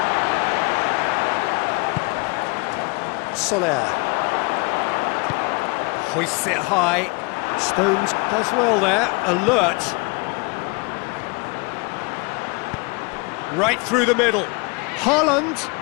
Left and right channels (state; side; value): quieter; right; 29.5 dB